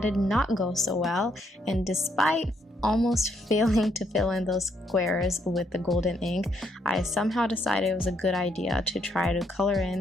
did not go so well. And despite almost failing to fill in those squares with the golden ink, I somehow decided it was a good idea to try to color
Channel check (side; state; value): both; normal; correlation 0.74